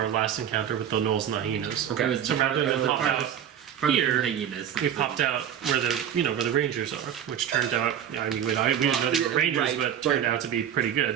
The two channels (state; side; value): quieter; left; 9.5 dB